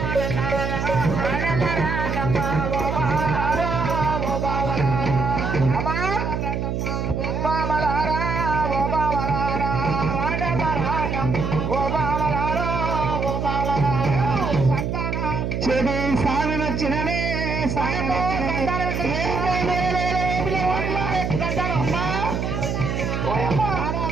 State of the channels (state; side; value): noise; right; hum, 1 dB below the sound